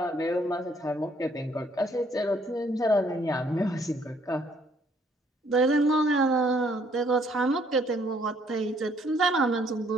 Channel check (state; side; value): normal; both; correlation 0.65